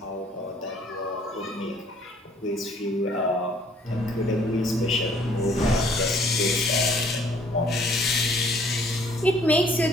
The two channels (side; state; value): both; normal; correlation 0.59